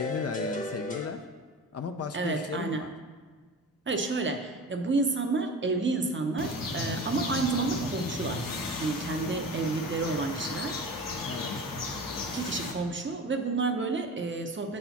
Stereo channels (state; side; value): normal; both; correlation 0.34